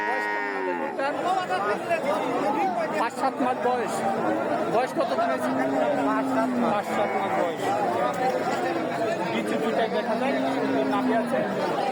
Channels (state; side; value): identical; both; correlation 1.00